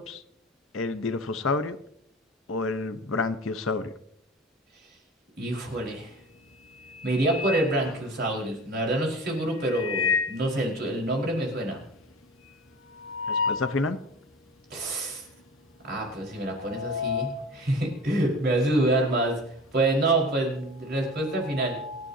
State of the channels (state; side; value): normal; both; correlation 0.37